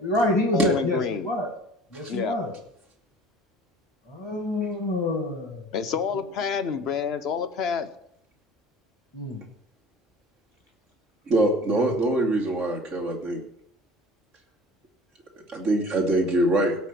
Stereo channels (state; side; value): normal; both; correlation 0.45